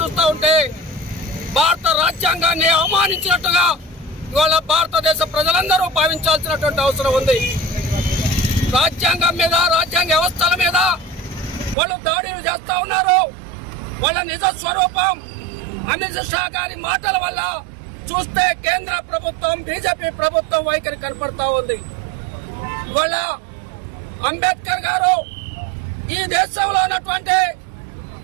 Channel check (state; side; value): drops out; left; at 11.8 s